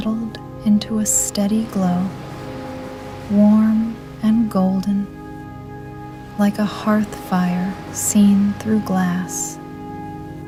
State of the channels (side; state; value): both; identical; correlation 1.00